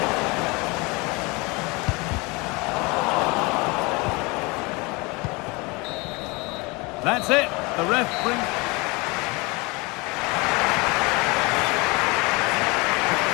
That's it. The ref brings...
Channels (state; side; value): quieter; right; 26.3 dB